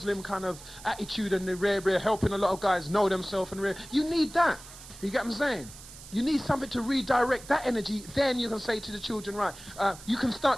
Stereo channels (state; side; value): noise; right; hiss, 17 dB below the sound